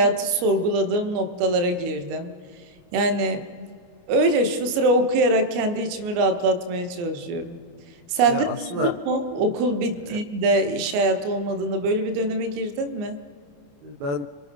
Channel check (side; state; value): left; late; 29 ms